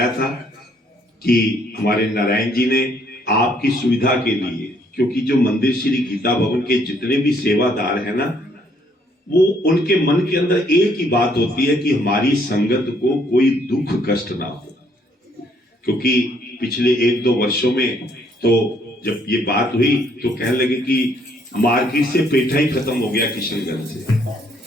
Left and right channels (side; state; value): both; normal; correlation 0.67